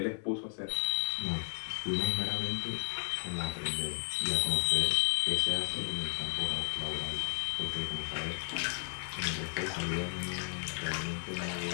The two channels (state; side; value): silent; right; digital silence